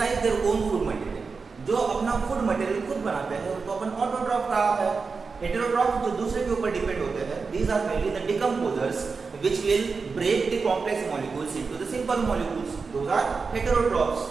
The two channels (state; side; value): quieter; left; 4.8 dB